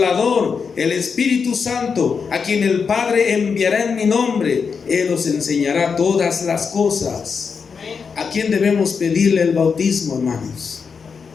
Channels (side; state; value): right; quieter; 5.8 dB